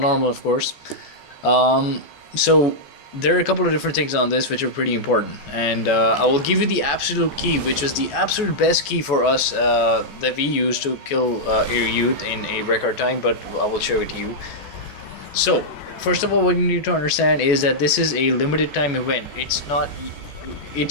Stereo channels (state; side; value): late; right; 14 ms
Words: of course. So there are a couple of different things on this which are pretty important, and I will give you the absolute key, which is the absolute best key for us that we use to kill ir-yut in a record time, but I will show it to you. So first of all, what you need to understand is that this is a limited time event.